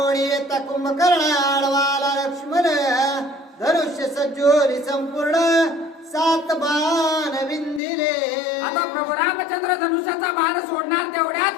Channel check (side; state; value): right; drops out; at 7.8 s